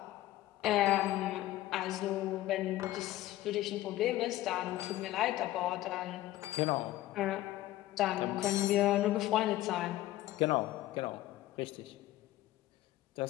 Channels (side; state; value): right; quieter; 15.6 dB